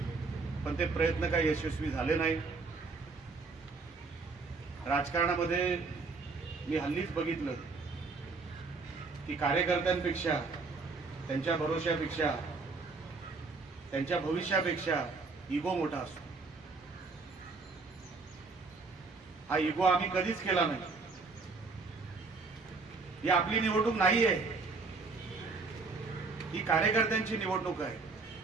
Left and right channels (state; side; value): quieter; left; 4.1 dB